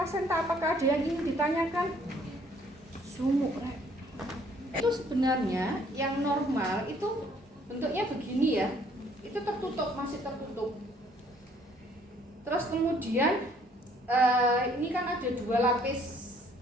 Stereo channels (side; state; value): both; normal; correlation 0.61